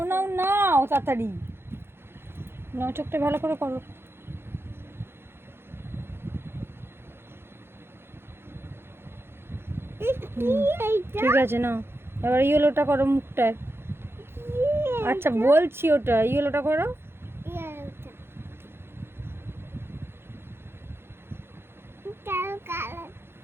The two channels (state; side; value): late; left; 0.11 ms